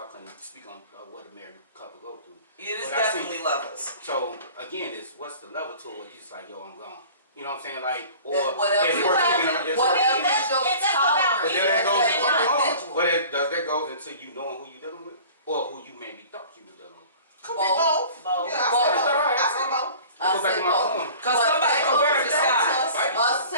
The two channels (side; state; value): both; inverted; correlation -0.44